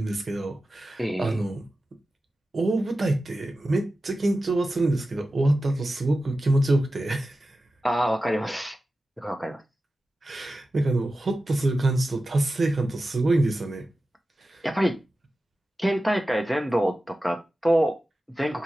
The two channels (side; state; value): both; normal; correlation 0.94